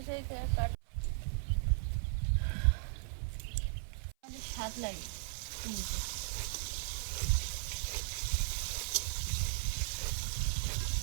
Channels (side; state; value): left; silent; 53 dB below the other